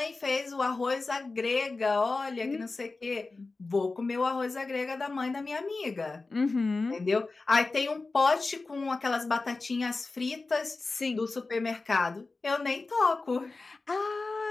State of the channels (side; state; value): right; quieter; 3.6 dB